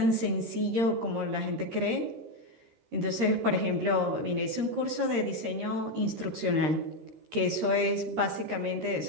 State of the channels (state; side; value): late; left; 13 ms